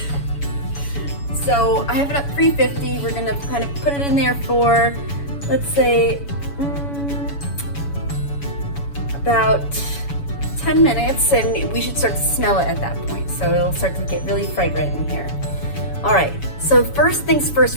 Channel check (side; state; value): right; late; 7.1 ms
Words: So I have it at 350. We're gonna kind of put it in there for, let's say, about 10 minutes, and we should start to smell it at that point. So it'll start to get really fragrant in here. All right, so first things